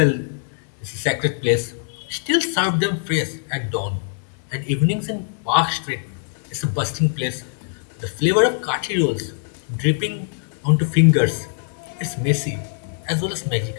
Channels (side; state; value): right; silent; 64 dB below the other